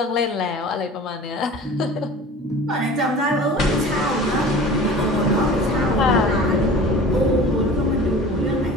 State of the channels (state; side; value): normal; both; correlation 0.40